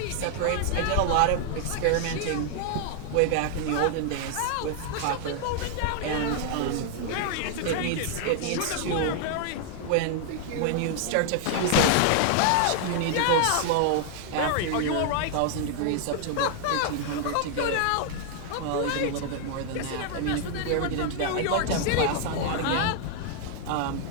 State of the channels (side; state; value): both; different; correlation 0.00